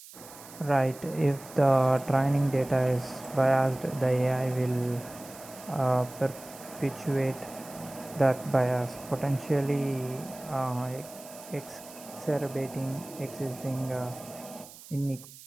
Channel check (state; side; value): noise; right; hiss, 18 dB below the sound